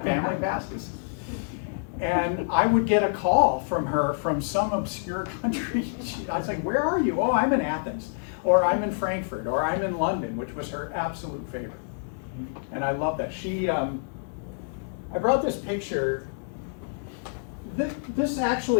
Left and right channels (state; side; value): silent; right; 60 dB below the other